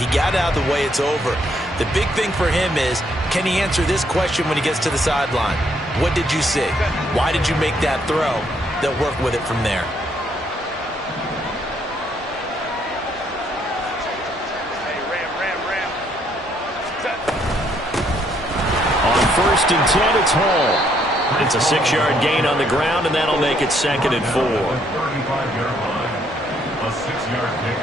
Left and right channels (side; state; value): both; normal; correlation 0.70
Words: got out of the way. It's over. The big thing for him is, can he answer this question when he gets to the sideline? What did you see? Why did you make that throw? They'll work with it from there. On first and 10, it's Hall. It's a 6-yard gain on the ground, and that'll make it 2nd and 4.